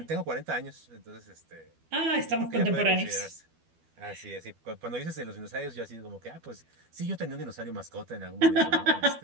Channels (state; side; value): late; left; 12 ms